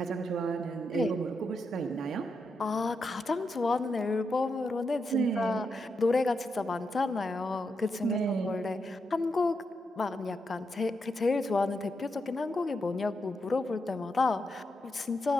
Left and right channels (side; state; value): both; normal; correlation 0.84